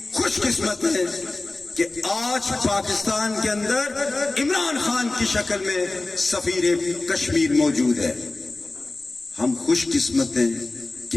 خوش قسمت ہیں کہ آج پاکستان کے اندر عمران خان کی شکل میں سفیر کشمیر موجود ہے. ہم خوش قسمت ہیں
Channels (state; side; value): quieter; right; 3.1 dB